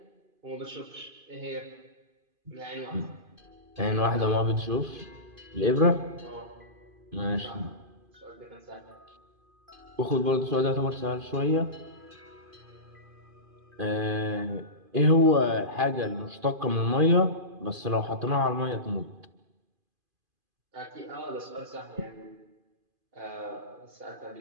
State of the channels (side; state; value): left; late; 2.5 ms